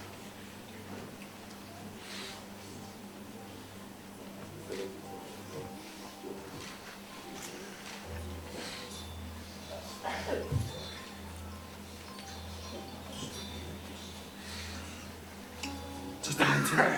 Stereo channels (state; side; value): identical; both; correlation 1.00